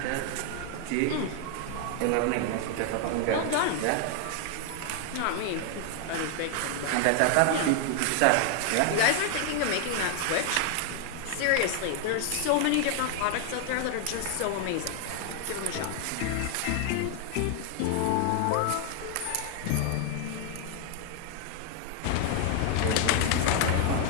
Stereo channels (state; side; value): different; both; correlation 0.00